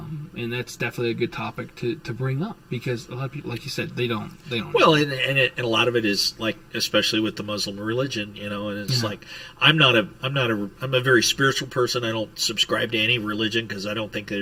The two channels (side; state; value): both; identical; correlation 1.00